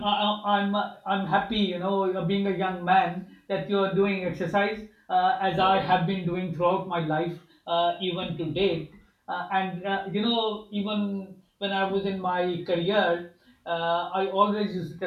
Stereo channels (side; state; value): both; identical; correlation 1.00